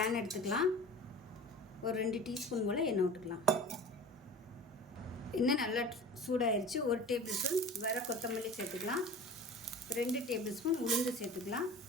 எடுத்துக்கலாம். ஒரு 2 டீஸ்பூன் போல் எண்ணெய் விட்டுக்கலாம். எண்ணெய் நல்லா சூடாயிருச்சு. 1 டேபிள் ஸ்பூன் வர கொத்தமல்லி சேர்த்துக்கலாம். 2 டேபிள் ஸ்பூன் உளுந்து சேர்த்துக்கலாம்.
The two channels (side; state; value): both; normal; correlation 0.38